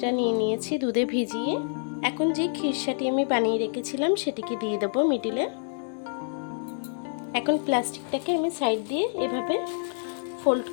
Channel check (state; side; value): silent; right; 60 dB below the other